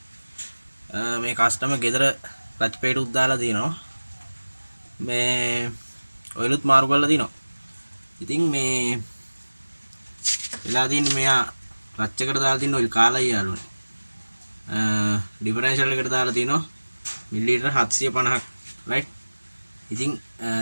මේ කස්ටමර් ගෙදර ක්ලච් පේටුත් දාලා තිනවා. මේ ඔයිලුත් මාරු කරලා තිනවා. ඉතින් මේ වෙලා තියෙන්නේ මෙයා ක්ලච් එකට දාලා තියෙන ඔයිල් කාලයි යාළුවනේ. ඩිෆරෙන්ෂල් එකට දාලා තිනවා මිලිලීටර් 750ක්. රයිට් ඉතින්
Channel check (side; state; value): both; inverted; correlation -1.00